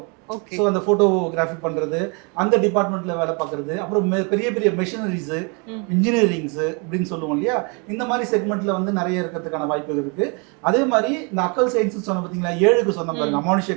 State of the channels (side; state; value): left; quieter; 33.4 dB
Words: ஓகே. ஸோ அந்த ஃபோட்டோகிராஃபி பண்ணுறது, அந்த டிபார்ட்மெண்ட்டில் வேலை பார்க்குறது, அப்புறம் பெரிய பெரிய மெஷினரிஸு, இன்ஜினியரிங்ஸு இப்படின்னு சொல்லுவோம் இல்லையா? இந்த மாதிரி செக்மெண்ட்டில் வந்து நிறைய இருக்கிறதுக்கான வாய்ப்புகள் இருக்குது. அதே மாதிரி இந்த அக்கல் சயின்ஸ்னு சொன்ன பார்த்தீங்களா, 7க்கு சொன்ன பாருங்க,